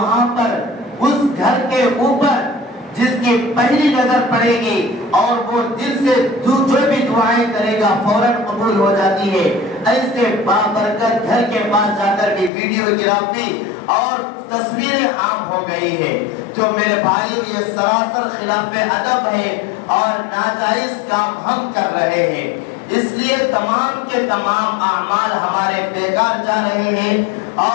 پر اس گھر کے اوپر جس کی پہلی نظر پڑے گی اور وہ دل سے جو بھی دعائیں کرے گا فوراً قبول ہو جاتی ہے. ایسے بابرکت گھر کے پاس جا کر بھی ویڈیوگرافی اور تصویریں عام ہو گئی ہے. تو میرے بھائیو یہ سراسر خلاف ادب ہے اور ناجائز کام ہم کر رہے ہیں. اس لیے تمام کے تمام اعمال ہمارے بیکار جا رہے ہیں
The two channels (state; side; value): drops out; right; at 12.5 s